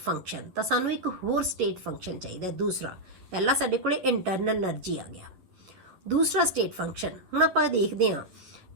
function. तो सानू एक होर state function चाहिए। दूसरा पहला साडे कोले internal energy आ गया, दूसरा स्टेट फंक्शन। हुण आपां देखते हैं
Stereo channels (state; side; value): late; left; 11 ms